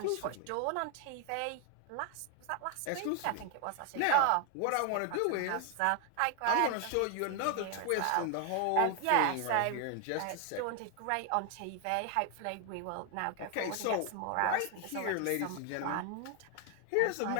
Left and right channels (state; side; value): different; both; correlation 0.01